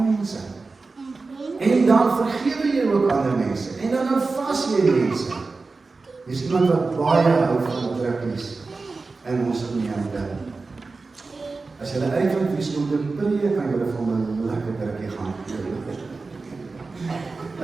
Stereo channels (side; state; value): left; quieter; 3.9 dB